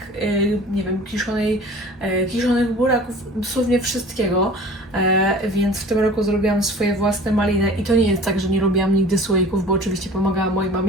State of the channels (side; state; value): both; normal; correlation 0.43